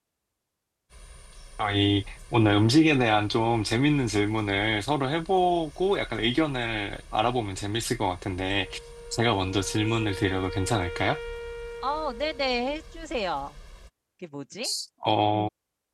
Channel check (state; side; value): identical; both; correlation 1.00